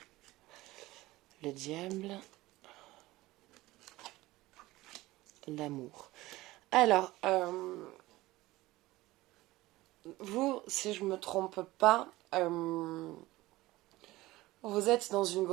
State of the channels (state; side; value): quieter; left; 18.5 dB